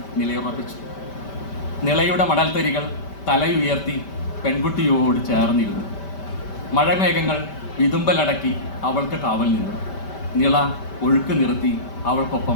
നിലയുറപ്പിച്ചു. നിളയുടെ മണൽത്തരികൾ തലയുയർത്തി പെൺകുട്ടിയോട് ചേർന്നിരുന്നു. മഴമേഘങ്ങൾ വിതുമ്പലടക്കി അവൾക്ക് കാവൽ നിന്നു. നിള ഒഴുക്ക് നിർത്തി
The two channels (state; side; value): late; right; 5.1 ms